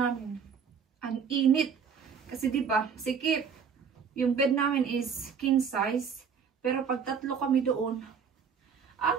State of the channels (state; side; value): quieter; left; 6.6 dB